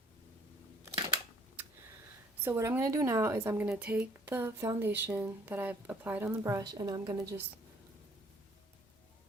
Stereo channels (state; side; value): normal; both; correlation 0.60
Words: So what I'm gonna do now is I'm gonna take the foundation that I've applied on the brush and I'm gonna just,